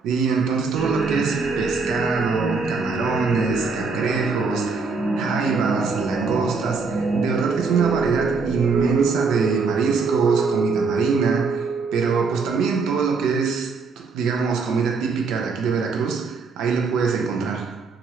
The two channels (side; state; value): left; quieter; 4.6 dB